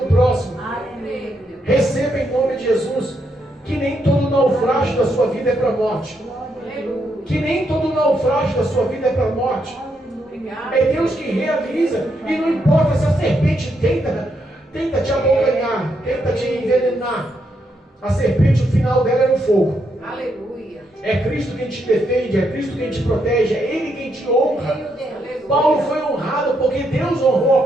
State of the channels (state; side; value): normal; both; correlation 0.78